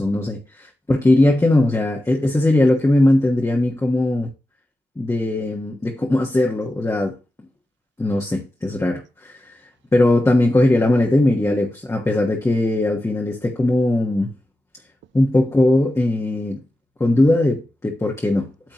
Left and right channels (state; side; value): normal; both; correlation 0.92